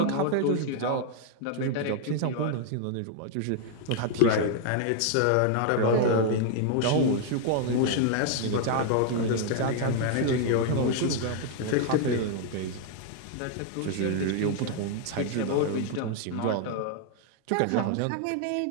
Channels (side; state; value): both; different; correlation 0.00